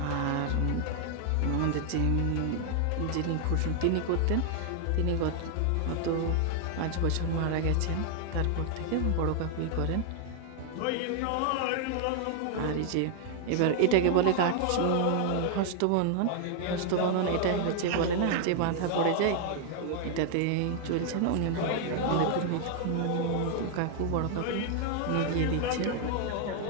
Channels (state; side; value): different; both; correlation 0.00